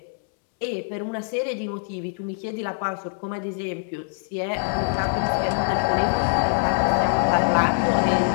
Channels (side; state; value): right; silent; digital silence